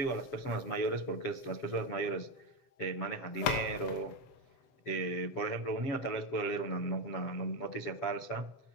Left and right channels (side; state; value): right; late; 7.7 ms